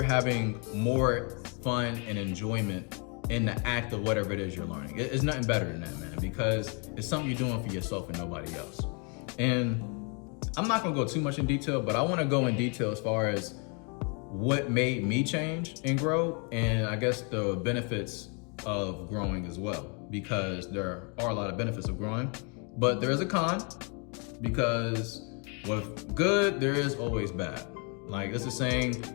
having more fun and enjoyment in the act of whatever it is you're learning. It's nothing better than that, man, because it's something you're doing for yourself and nobody else. And I'm not gonna go too much in detail, but I wanna go in detail as far as what made me change and grow, and I guess the benefits of growing as well, because there are a lot of benefits of growing, but there is a con, because with good, there is always bad. Like it's a saying,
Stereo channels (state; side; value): quieter; right; 36.0 dB